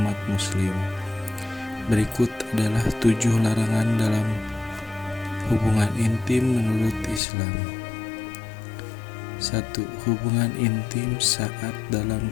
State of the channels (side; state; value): right; drops out; at 7.2 s